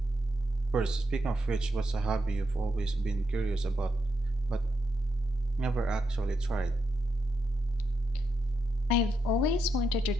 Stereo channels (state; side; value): normal; both; correlation 0.83